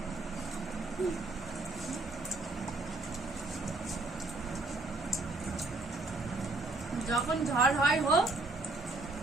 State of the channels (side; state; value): left; quieter; 3.1 dB